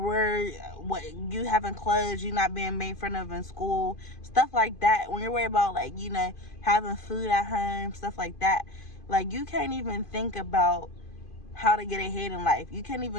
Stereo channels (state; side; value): late; right; 2.5 ms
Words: you having clothes, you not being made fun of in school, stuff like that, when you're worried about like, you know, having food at home, stuff like that, like you can't even think about how to get ahead in life. You can't